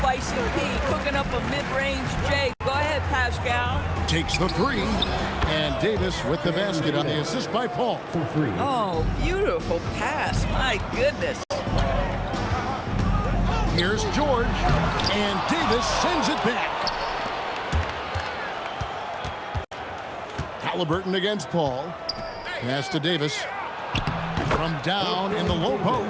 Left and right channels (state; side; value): identical; both; correlation 1.00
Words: P, cooking up a mid-range J. Go ahead, Pascal. Takes the three. And Davis with the basket on the assist by Paul. Oh, beautiful pass. My goodness. Here's George. And Davis sends it back. Halliburton against Paul. Pass to Davis. From down in the low